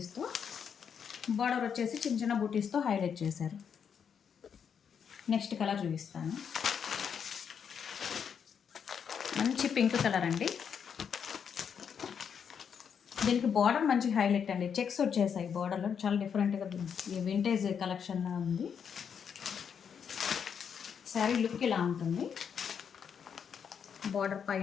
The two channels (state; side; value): quieter; right; 7.3 dB